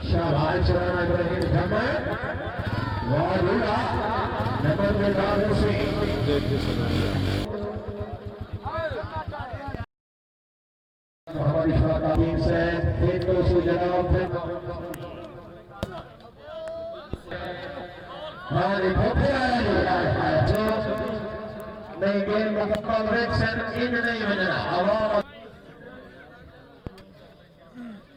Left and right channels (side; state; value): both; identical; correlation 1.00